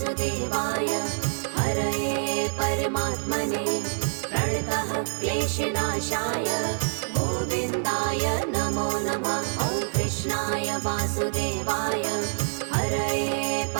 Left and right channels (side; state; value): left; silent; digital silence